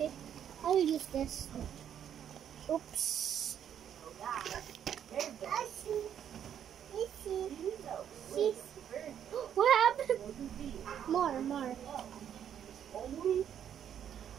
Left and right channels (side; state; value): left; quieter; 9.3 dB